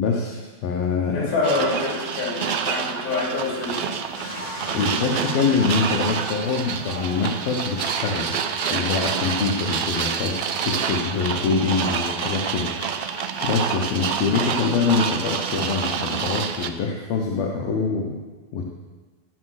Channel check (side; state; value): right; late; 12 ms